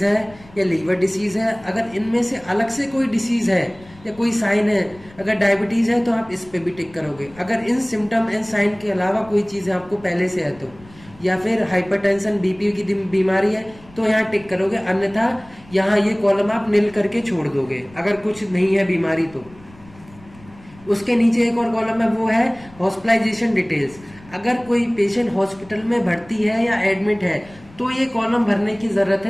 है या लीवर डिसीज है। अगर इनमें से अलग से कोई डिसीज है या कोई साइन है, अगर डायबिटीज है तो आप इस पे भी टिक करोगे। अगर इन सिम्टम एंड साइन के अलावा कोई चीज है आपको पहले से है तो, या फिर हाइपरटेंशन बीपी की बीमारी है तो यहाँ टिक करोगे, अन्यथा यहाँ ये कॉलम आप नील करके छोड़ दोगे अगर कुछ नहीं है बीमारी तो। उसके नीचे एक और कॉलम है वो है हॉस्पिटलाइजेशन डिटेल्स। अगर कोई पेशेंट हॉस्पिटल में भर्ती है या एडमिट है तो ये कॉलम भरने की जरूरत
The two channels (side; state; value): left; noise; rumble, 24 dB below the sound